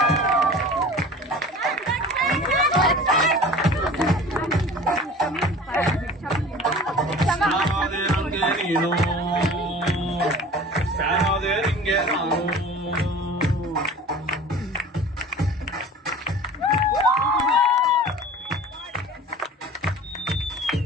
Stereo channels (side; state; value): both; normal; correlation 0.41